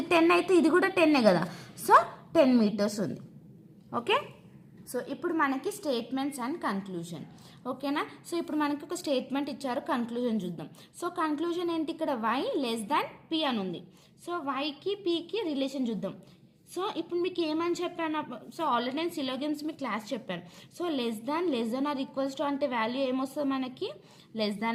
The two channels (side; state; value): both; identical; correlation 1.00